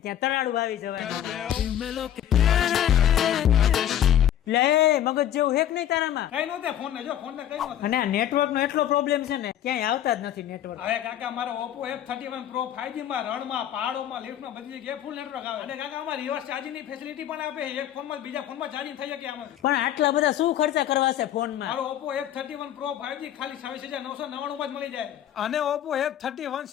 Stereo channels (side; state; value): right; quieter; 10.9 dB